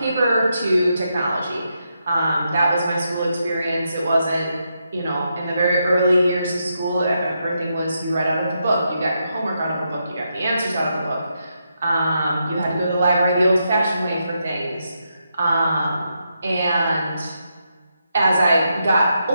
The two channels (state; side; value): inverted; both; correlation -0.82